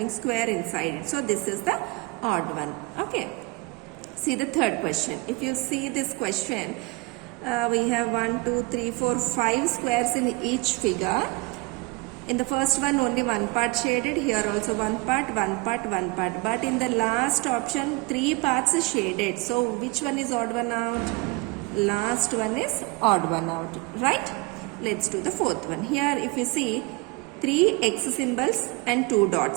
square inside it. So this is the odd one. Okay. See the third question. If you see this question, we have 1, 2, 3, 4, 5 squares in each figure. In the first one only one part shaded, here also one part, one part, one part. But in the last option 3 parts is shaded. So which one is odd one out? Last one is odd one out, right? Let's do the fourth one. Here if you see 3 X symbols and 2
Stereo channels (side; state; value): left; quieter; 24.9 dB